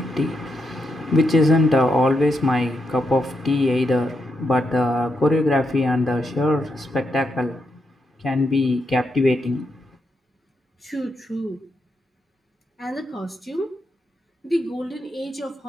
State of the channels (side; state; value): both; normal; correlation 0.82